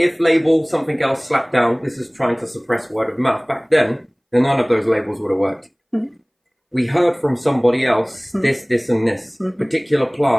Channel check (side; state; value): both; identical; correlation 1.00